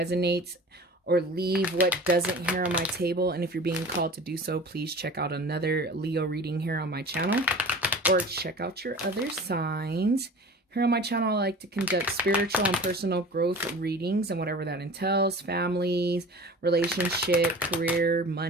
or leave what doesn't here on my table, and if you're being called to do so, please check out another Leo reading here on my channel, or check out your other signs. Here on my channel, I like to conduct spiritual and personal growth readings and whatever that entails. Families, relationship, career,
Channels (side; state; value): both; normal; correlation 0.39